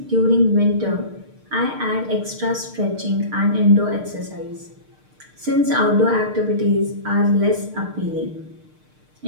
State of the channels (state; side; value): late; left; 6.6 ms